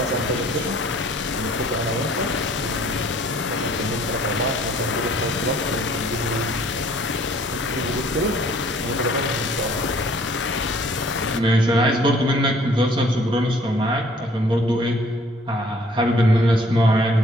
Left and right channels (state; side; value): normal; both; correlation 0.57